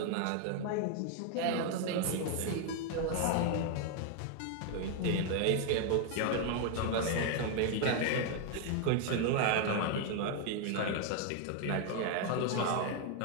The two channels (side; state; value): both; different; correlation 0.01